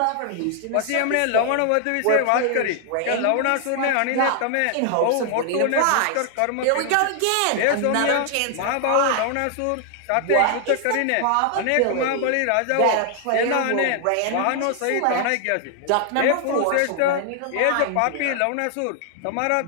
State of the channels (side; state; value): both; different; correlation 0.00